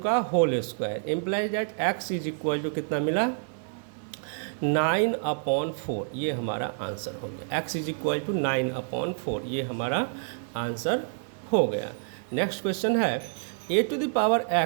का whole square implies that x is equal to कितना मिला 9/4। ये हमारा आंसर हो गया, x इज इक्वल टू 9/4, ये हमारा आंसर हो गया। नेक्स्ट क्वेश्चन है a to the power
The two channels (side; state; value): left; silent; digital silence